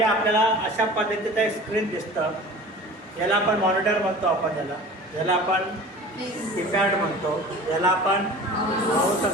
आपल्याला अशा पद्धतीचं एक स्क्रीन दिसतं. याला आपण मॉनिटर म्हणतो, याला आपण कीपॅड म्हणतो, याला आपण माऊस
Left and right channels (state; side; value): normal; both; correlation 0.40